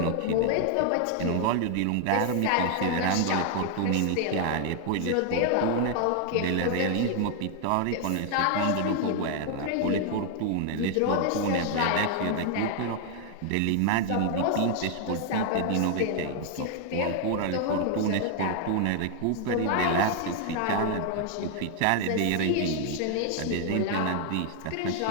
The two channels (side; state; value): both; different; correlation 0.00